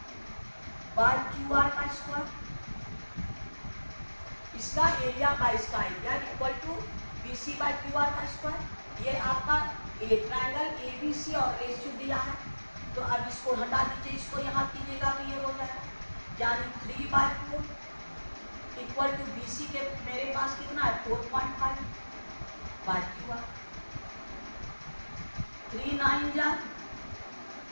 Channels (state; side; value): inverted; both; correlation -1.00